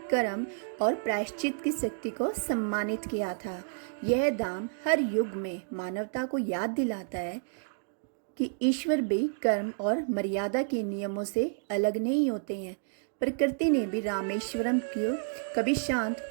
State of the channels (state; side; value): silent; left; digital silence